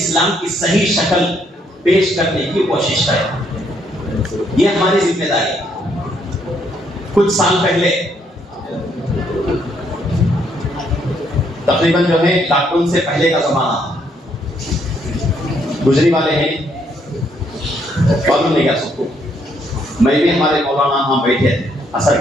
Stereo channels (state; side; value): normal; both; correlation 0.71